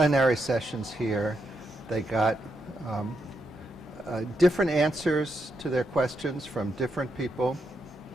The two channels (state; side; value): normal; both; correlation 0.82